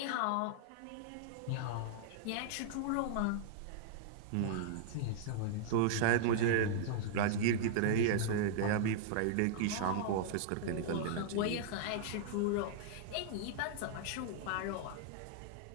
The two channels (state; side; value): different; both; correlation -0.01